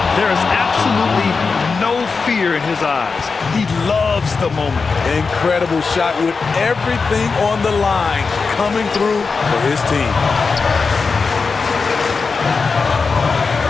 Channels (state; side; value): quieter; right; 4.7 dB